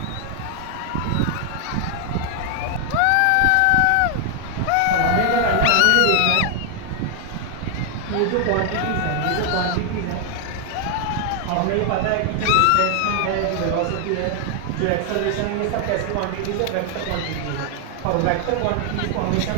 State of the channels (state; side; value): different; both; correlation 0.00